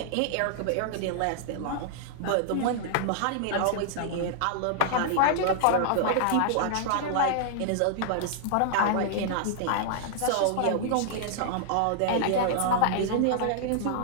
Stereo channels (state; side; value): different; both; correlation -0.01